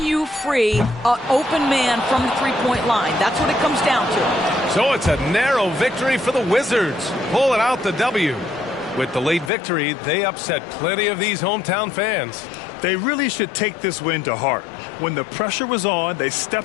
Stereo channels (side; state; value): right; drops out; at 9.5 s